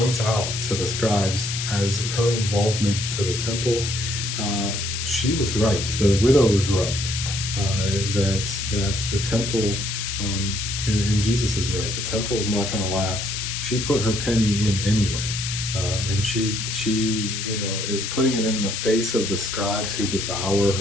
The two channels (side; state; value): left; noise; hiss, 4 dB below the sound